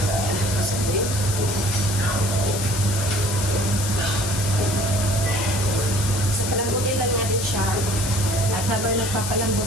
So, palambutin lang natin siya. At habang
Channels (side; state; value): left; noise; hiss, 5 dB below the sound